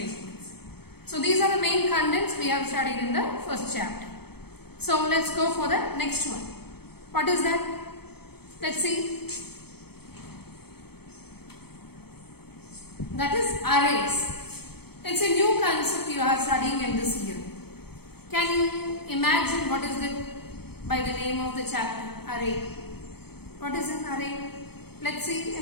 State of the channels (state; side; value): late; right; 0.96 ms